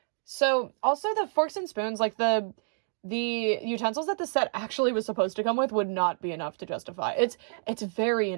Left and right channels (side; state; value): left; silent; digital silence